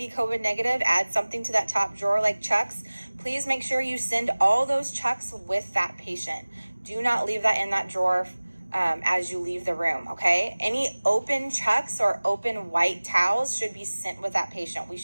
COVID negative, add something to that top drawer like chucks. Please make sure you send all those chucks with that patient. Do not leave that in that drawer as you leave the room, okay? Any open chucks or open white towels should be sent with that patient. We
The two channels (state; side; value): inverted; both; correlation -1.00